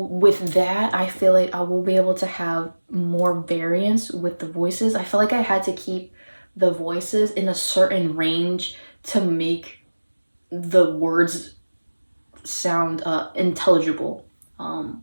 with that, I feel like I will be able to have more variance with the voices. I feel like I had to keep the voices in a certain range to make the words sound intelligible. I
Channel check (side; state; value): both; inverted; correlation -1.00